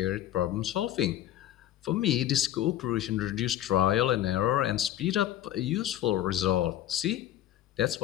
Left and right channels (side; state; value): right; quieter; 12.4 dB